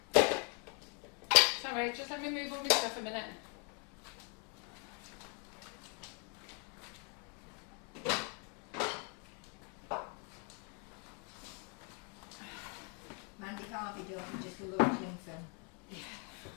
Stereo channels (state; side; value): quieter; right; 32.3 dB